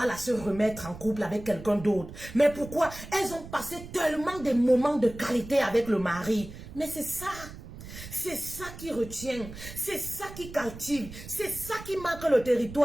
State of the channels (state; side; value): noise; right; rumble, 14 dB below the sound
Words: à se remettre en couple avec quelqu'un d'autre. Mais pourquoi? Elles ont passé tellement de moments de qualité avec le mari. Mais c'est ça qui retient, c'est ça qui captive, c'est ça qui marque le